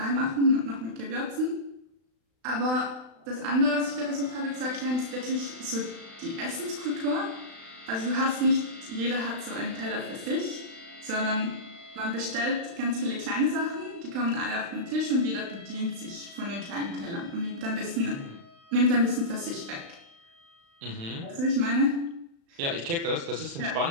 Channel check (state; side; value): late; left; 35 ms